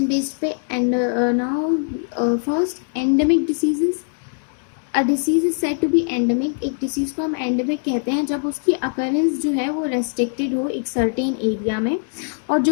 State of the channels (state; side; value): silent; right; 65 dB below the other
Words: based पे। And now first, endemic diseases. A disease is said to be endemic. एक डिसीज़ को हम एंडेमिक कहते हैं जब उसकी अकरेंस जो है वो रेस्ट्रिक्टेड हो एक सर्टेन एरिया में, और